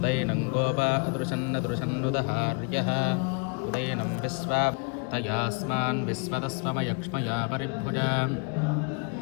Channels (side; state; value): right; quieter; 34.5 dB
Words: गोपा अदृशन्नदृशन्नुदहार्यः उदैनं विश्वा तयास्मान् विश्वतस्वमयक्ष्मया परिभुजा